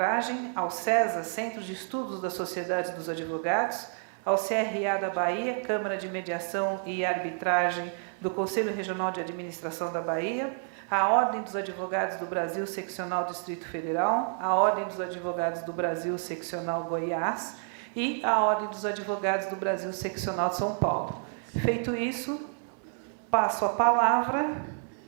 ao CESA, Centro de Estudos da Sociedade dos Advogados, ao CRA da Bahia, Câmara de Mediação e Arbitragem do Conselho Regional de Administração da Bahia, à Ordem dos Advogados do Brasil, Seccional Distrito Federal, à Ordem dos Advogados do Brasil, Seccional Goiás, e à Ordem dos Advogados do Brasil, Seccional de São Paulo. Feito isso, passo a palavra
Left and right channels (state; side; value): silent; left; 57 dB below the other